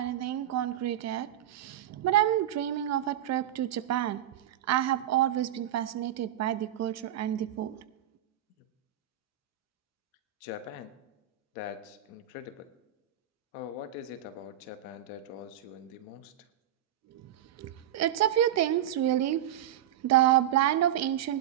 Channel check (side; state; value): left; quieter; 11.4 dB